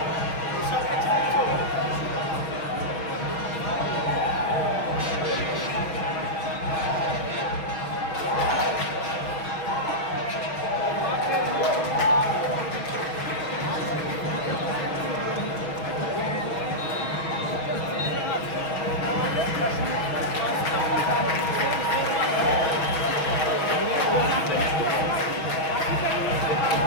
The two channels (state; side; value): late; right; 6.2 ms